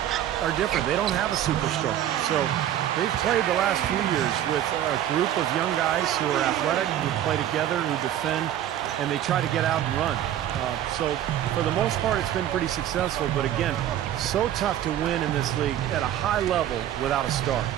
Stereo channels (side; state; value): left; quieter; 11.5 dB